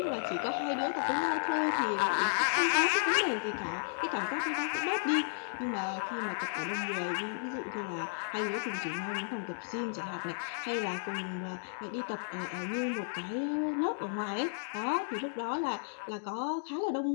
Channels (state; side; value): silent; right; digital silence